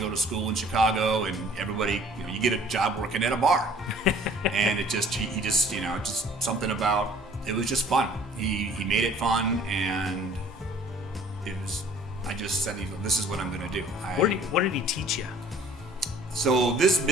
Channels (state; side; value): normal; both; correlation 0.53